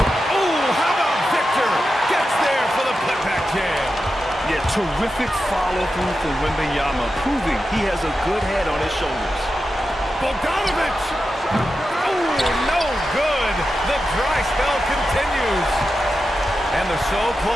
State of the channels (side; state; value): both; normal; correlation 0.90